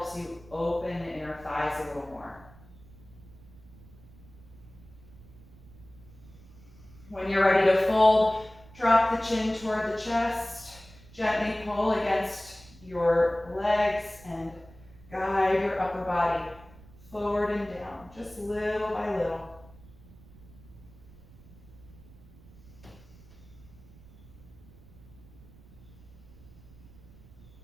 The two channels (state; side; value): noise; right; rumble, 21 dB below the sound